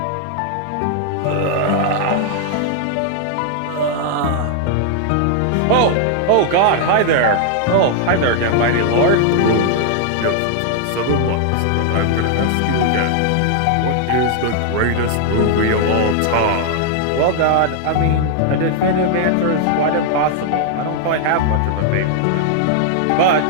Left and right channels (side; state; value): both; different; correlation 0.00